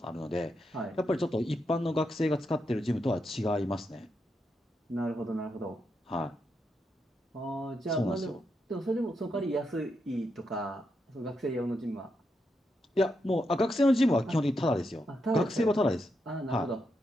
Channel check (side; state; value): both; normal; correlation 0.83